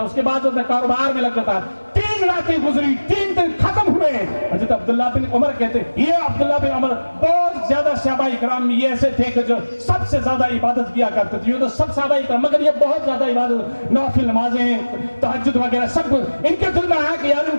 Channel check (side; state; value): both; inverted; correlation -1.00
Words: اس کے بعد اپنے کاروبار میں لگ جاتا۔ 3 راتیں گزری، 3 دن ختم ہوئے۔ حضرت عبداللہ بن عمر کہتے ہیں، یہ عبداللہ بن عمر بہت زیادہ صحابہ کرام میں یہ ایسے تھے کہ جو سب سے زیادہ عبادت کیا کرتے تھے، یہ تو سب صحابہ کرام، مگر یہ بہت زیادہ عبادت، نوافل نمازیں، تہجد وغیرہ سب کچھ ان کے دل میں آیا کہ یار